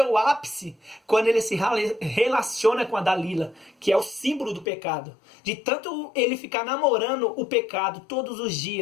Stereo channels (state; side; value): drops out; right; at 4.7 s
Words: ápice, quando ele se relaciona com a Dalila, que é o símbolo do pecado, de tanto ele ficar namorando o pecado todos os